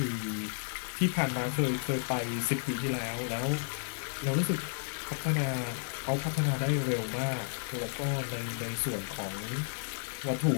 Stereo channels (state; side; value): silent; right; 56 dB below the other